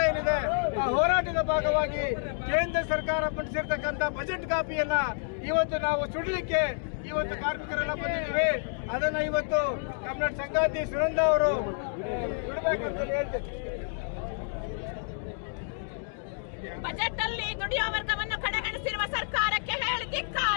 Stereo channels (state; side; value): silent; right; 58 dB below the other